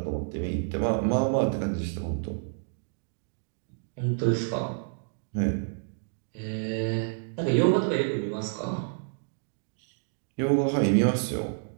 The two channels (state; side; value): silent; left; digital silence